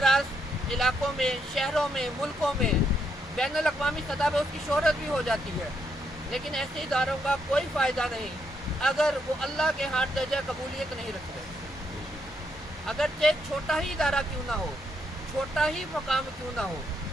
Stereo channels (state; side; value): normal; both; correlation 0.76